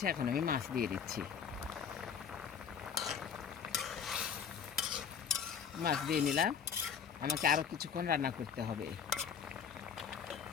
এখন আমি মাছ দিয়ে দিচ্ছি। মাছ দিয়ে নিলাম, আমাকে আরও কিছুক্ষণ রান্না করতে হবে,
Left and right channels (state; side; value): quieter; right; 7.1 dB